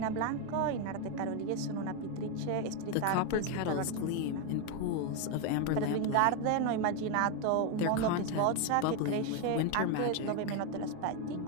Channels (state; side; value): different; both; correlation 0.01